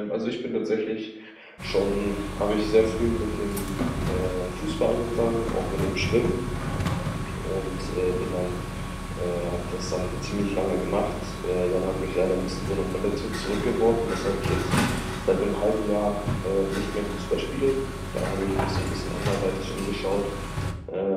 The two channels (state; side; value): identical; both; correlation 1.00